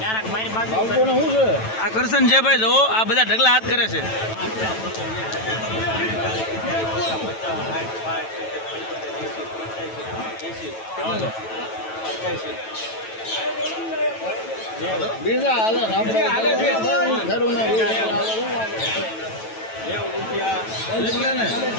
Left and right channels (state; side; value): late; right; 9.1 ms